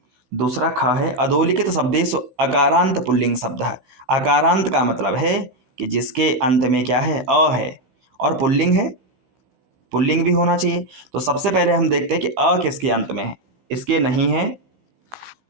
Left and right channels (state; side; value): late; left; 16 ms